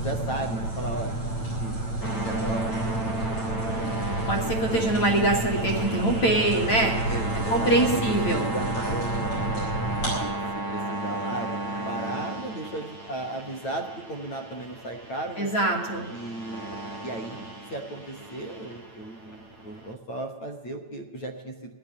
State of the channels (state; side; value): late; right; 9.0 ms